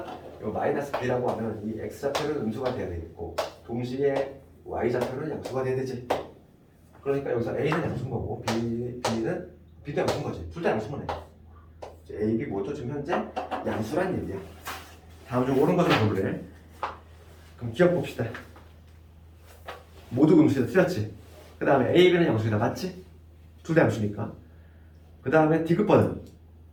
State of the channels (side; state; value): both; identical; correlation 1.00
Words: 이 마이너스 b라고 하면 이 x 좌표는 음수가 돼야 되겠고 동시에 y 좌표는 양수가 돼야 되지. 그러니까 여기서 A는 양수인 거고 B도 양수인 거지. 둘 다 양수면 해. A, B 모두 지금 현재 양수란 얘기야. 다음 중 옳은 것을 고르래. 그럼 기억 봅시다. 모두 음수이다. 틀렸지? 그 다음에 A, B는 양수이다. 맞지? 둘 다 양수니까. 그 다음에 D급번은